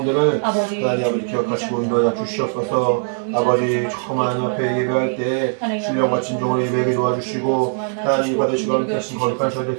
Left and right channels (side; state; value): left; silent; 66 dB below the other